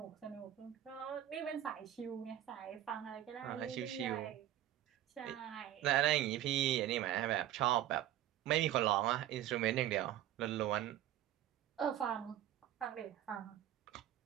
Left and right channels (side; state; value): left; quieter; 12.3 dB